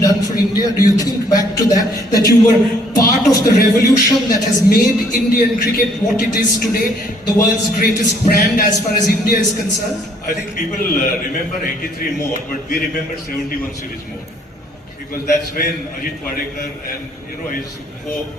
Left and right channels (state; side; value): normal; both; correlation 0.63